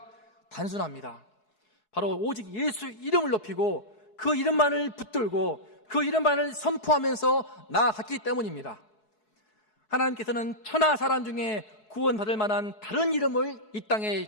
단순합니다. 바로 오직 예수 이름을 높이고 그 이름만을 붙들고 그 이름만을 선포하면서 나아갔기 때문입니다. 하나님께서는 천하 사람 중에 구원받을 만한 다른 이름을 이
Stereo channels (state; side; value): late; right; 4.7 ms